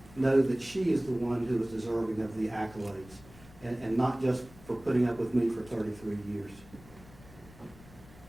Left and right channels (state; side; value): noise; left; rumble, 21 dB below the sound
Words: know that she is the one who is deserving of the accolades, and not just for putting up with me for 33 years.